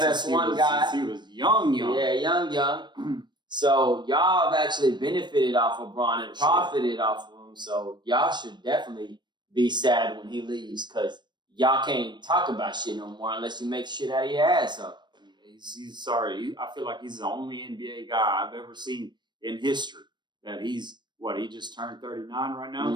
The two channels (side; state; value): left; late; 0.22 ms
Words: guy, since he was young. Yeah, young. So y'all have actually benefited off of Bron and profited off of him. So y'all should definitely be sad when he leaves, because y'all can't talk about shit no more unless you make shit out of your ass up. He's sorry. I feel like he's the only NBA guy I've ever seen in history that he just turned 39 right